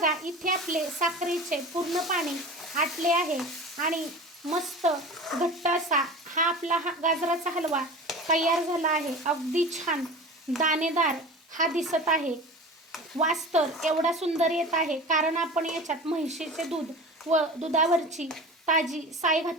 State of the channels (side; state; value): both; normal; correlation 0.34